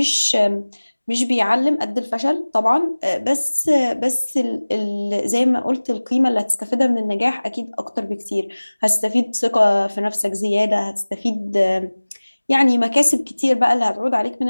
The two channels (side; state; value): both; inverted; correlation -1.00